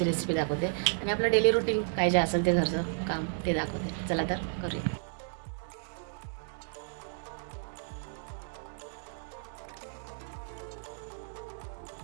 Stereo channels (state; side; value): silent; left; digital silence